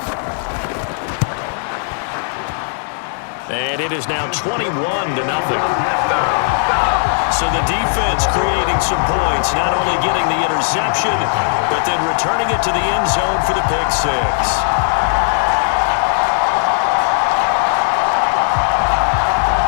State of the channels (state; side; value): silent; right; digital silence